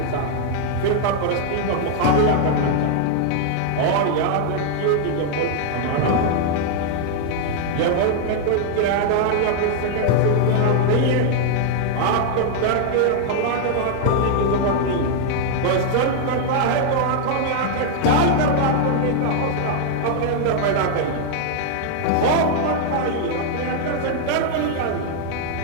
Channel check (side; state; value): both; different; correlation 0.00